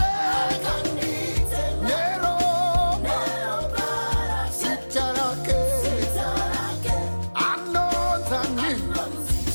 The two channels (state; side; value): inverted; both; correlation -1.00